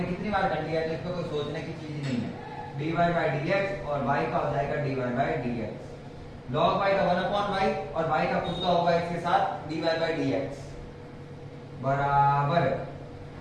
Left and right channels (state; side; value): identical; both; correlation 1.00